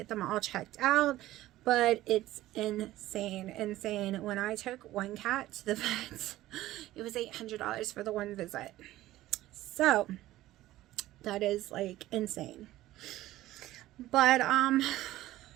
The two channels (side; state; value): left; quieter; 15.5 dB